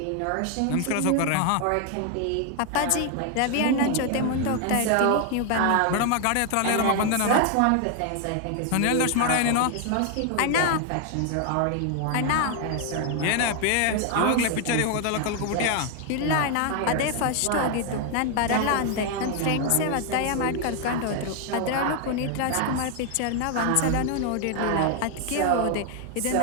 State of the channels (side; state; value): both; different; correlation 0.00